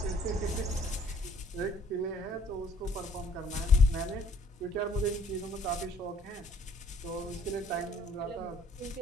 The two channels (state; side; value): normal; both; correlation 0.58